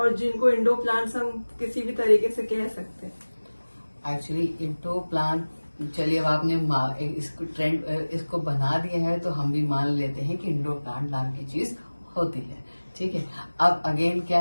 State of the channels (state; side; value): inverted; both; correlation -1.00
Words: जिनको इंडोर प्लांट्स हम किसी भी तरीके से कह सकते हैं। एक्चुअली इंडोर प्लांट, चलिए अब आपने इसको ट्रेंड इसको बना दिया है तो हम भी मान लेते हैं कि इंडोर प्लांट नाम की चीज होती है, ठीक है। अब अगेन